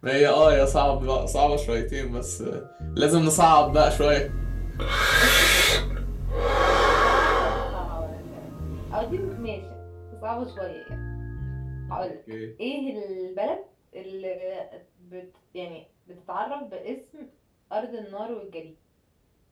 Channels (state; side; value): identical; both; correlation 1.00